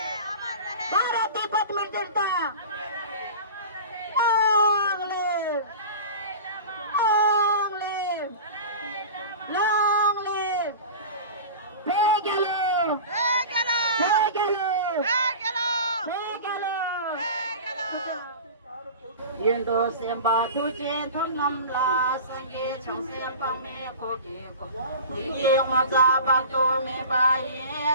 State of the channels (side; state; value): both; inverted; correlation -0.34